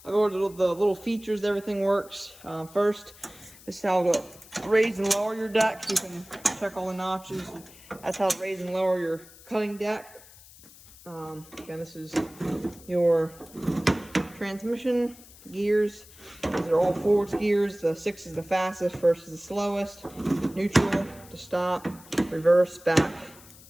I'll go over the little features, everything works. First, this is how to raise and lower your deck. You can check all the notches. That's how to raise and lower your cutting deck. Again, this is your transmission gears. These are all forwards gears. The 6 is the fastest, first is the slowest, neutral to stop, reverse, back.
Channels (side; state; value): left; noise; hiss, 21 dB below the sound